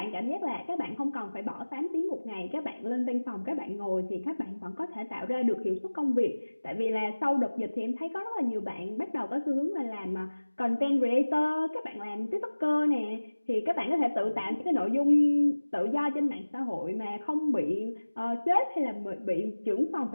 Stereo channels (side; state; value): both; inverted; correlation -1.00